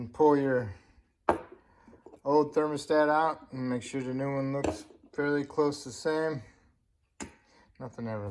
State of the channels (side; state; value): both; identical; correlation 1.00